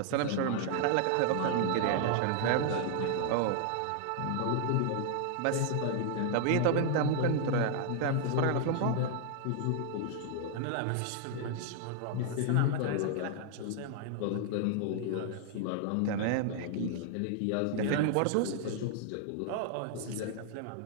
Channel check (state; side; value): different; both; correlation 0.00